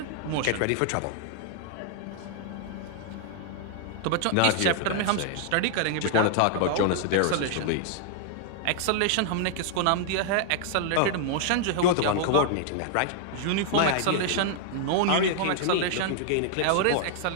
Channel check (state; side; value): different; both; correlation 0.00